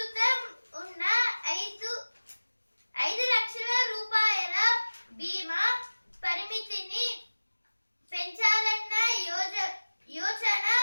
ఉన్న 5 లక్షల రూపాయల బీమా పరిమితిని పెంచాలన్న యోచన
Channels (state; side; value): inverted; both; correlation -1.00